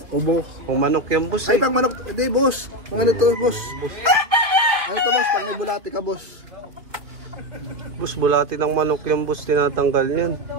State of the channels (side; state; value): left; late; 2.7 ms